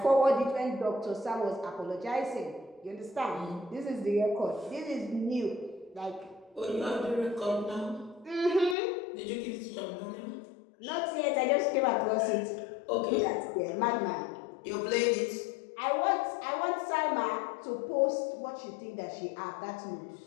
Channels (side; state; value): right; drops out; at 8.8 s